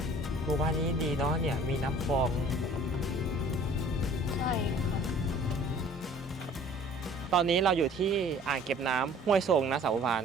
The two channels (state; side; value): normal; both; correlation 0.51